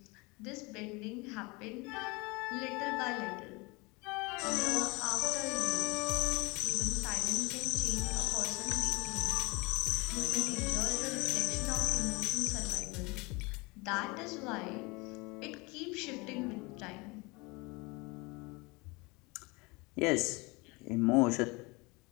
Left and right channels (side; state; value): right; quieter; 26.1 dB